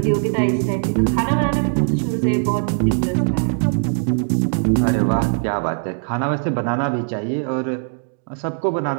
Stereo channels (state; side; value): silent; left; 63 dB below the other